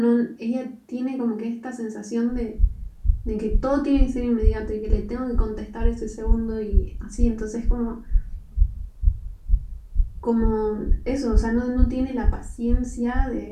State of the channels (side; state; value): both; identical; correlation 1.00